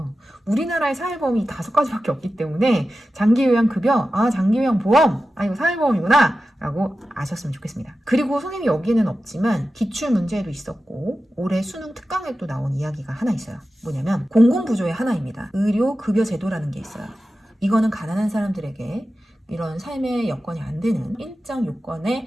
우리나라의 사회보험이 5가지밖에 없기 때문에 장기요양급여, 장기요양보험, 이거 사회보험이구나 라고 아셨으면 좋겠습니다. 그리고 선생님이 여기에는 없지만 기출문제에도 있었고 올해 수능 특강에 또 나온 이야기가 하나 있어요. 뭐냐면 공공부조의 하나입니다. 의료급여제도라는 게 있어요. 이거는 가난한 사람들에게 이런 삶의 여건이 안 되는 일정 요건에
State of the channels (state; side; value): normal; both; correlation 0.93